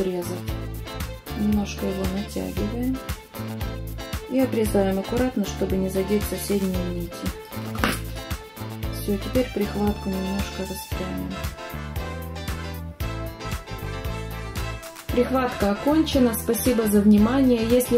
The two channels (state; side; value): identical; both; correlation 1.00